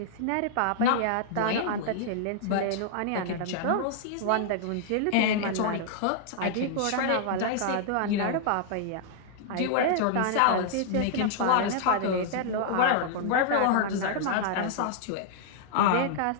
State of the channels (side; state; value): both; different; correlation -0.01